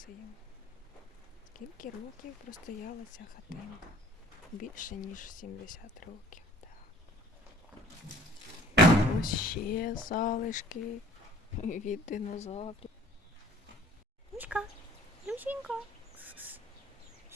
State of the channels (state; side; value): normal; both; correlation 0.53